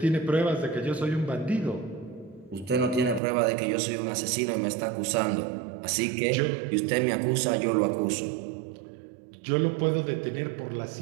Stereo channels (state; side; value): drops out; left; at 3.2 s